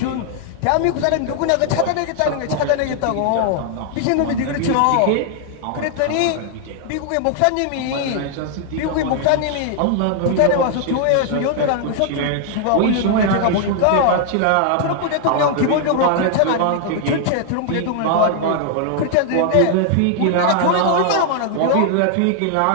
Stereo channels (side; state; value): both; different; correlation 0.00